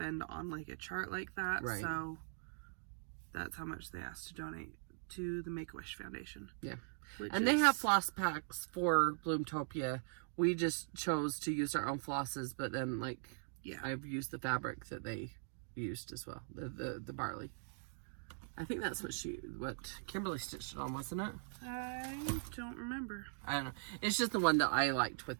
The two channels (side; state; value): left; silent; digital silence